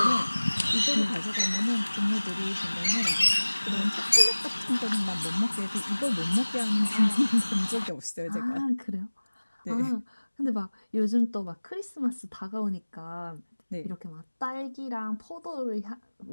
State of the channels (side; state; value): both; inverted; correlation -1.00